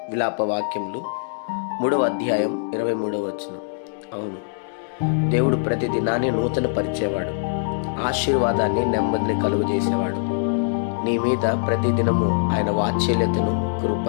విలాప వాక్యములు 3వ అధ్యాయం 23వ వచనం. అవును, దేవుడు ప్రతి దినాన్ని నూతన పరిచేవాడు, ఆశీర్వాదాన్ని నెమ్మదిని కలుగజేసేవాడు. నీ మీద ప్రతిదినము ఆయన వాత్సల్యతను,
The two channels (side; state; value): right; silent; digital silence